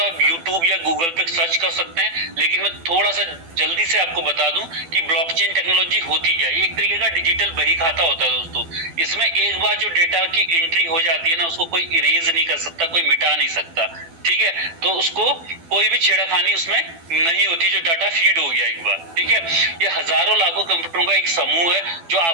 आप यूट्यूब या गूगल पे सर्च कर सकते हैं, लेकिन मैं थोड़ा सा जल्दी से आपको बता दूं कि ब्लॉकचेन टेक्नोलॉजी होती क्या है। ये एक तरीके का डिजिटल बही खाता होता है दोस्तों। इसमें एक बार जो डेटा की एंट्री हो जाती है ना, उसको कोई इरेज नहीं कर सकता, कोई मिटा नहीं सकता, ठीक है। तो उसको कोई भी छेड़खानी उसमें नहीं होती, जो डाटा फीड हो गया एक बार, ठीक है। ये हजारों लाखों कंप्यूटरों का एक समूह है जो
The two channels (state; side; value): late; left; 12 ms